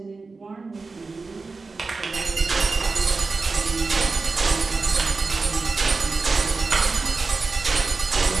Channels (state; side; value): quieter; left; 4.0 dB